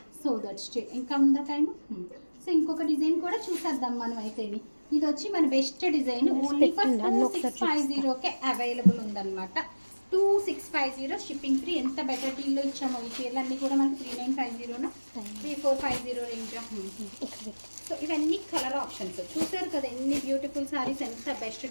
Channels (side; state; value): both; inverted; correlation -1.00